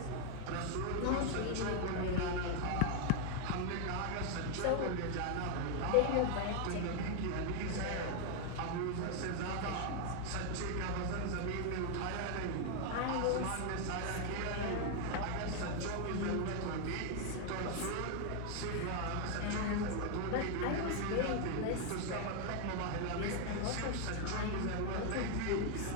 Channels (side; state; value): both; different; correlation 0.01